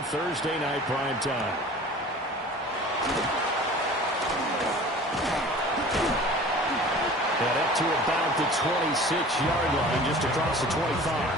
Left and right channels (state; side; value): normal; both; correlation 0.43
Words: Thursday Night Prime Time. And up to about the 26-yard line, just across the 25.